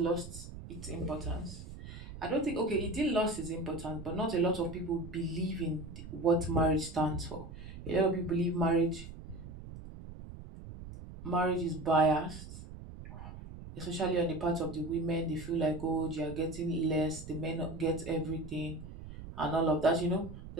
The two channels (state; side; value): noise; right; rumble, 12 dB below the sound